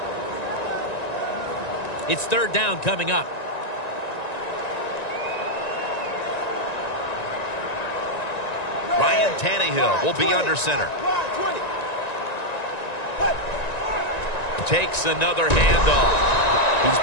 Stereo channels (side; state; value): right; late; 1.9 ms